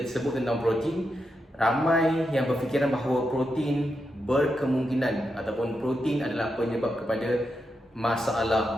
sebut tentang protein, ramai yang berfikiran bahawa protein berkemungkinan ataupun protein adalah penyebab kepada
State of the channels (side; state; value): both; normal; correlation 0.85